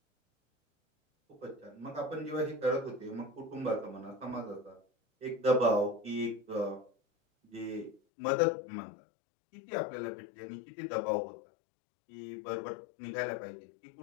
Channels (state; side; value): drops out; right; at 8.0 s